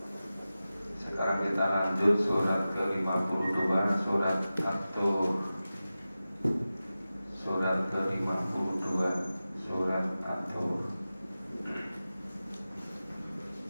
Sekarang kita lanjut surat ke-52, surat At-Tur. Surat ke-52, surat At-Tur.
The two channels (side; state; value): both; inverted; correlation -0.95